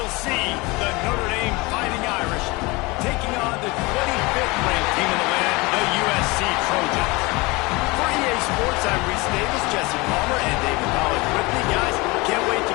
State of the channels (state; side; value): quieter; right; 24.5 dB